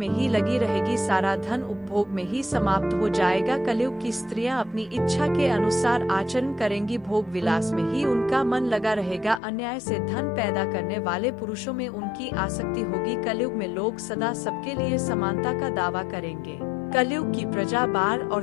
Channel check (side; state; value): right; drops out; at 9.4 s